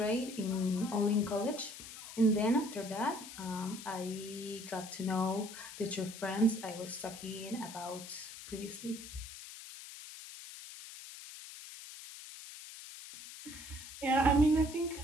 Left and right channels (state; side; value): noise; left; hiss, 13 dB below the sound